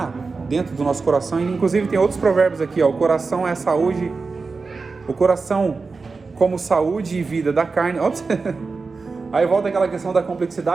dentro do nosso coração, inclusive tem outros provérbios aqui, ó, o coração é saúde, o coração como saúde e vida da carne. Ops. Aí volta aquela questão da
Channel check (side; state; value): left; quieter; 4.3 dB